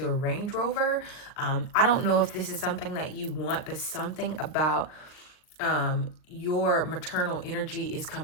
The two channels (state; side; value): late; right; 39 ms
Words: a Range Rover. I don't know if this is something that you want, but something about your maternal energy is